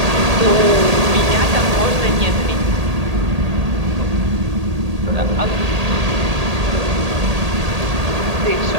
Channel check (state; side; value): late; left; 1.8 ms